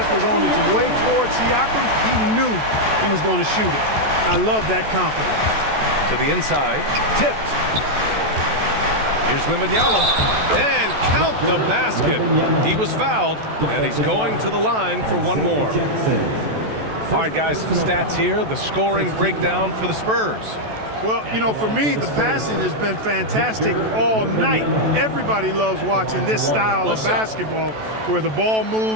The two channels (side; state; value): left; late; 14 ms